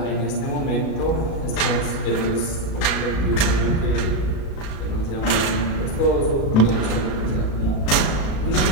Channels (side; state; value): right; late; 36 ms